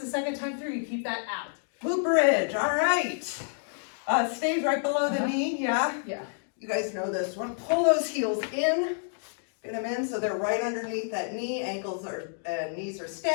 second time through, you keep that out. Glute bridge, all right. Stays right below the Uh-huh. knee, yeah? Yeah. You guys know this one. Pull those heels in, get them in so they're right underneath that knee. Ankles are, knees are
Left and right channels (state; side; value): silent; right; digital silence